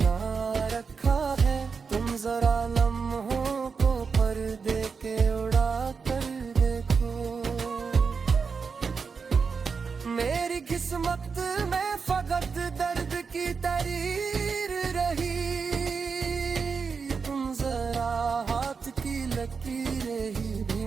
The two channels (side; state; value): left; quieter; 5.4 dB